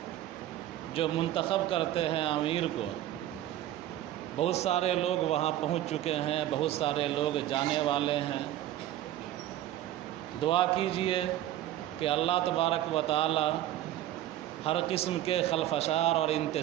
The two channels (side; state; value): left; quieter; 13.4 dB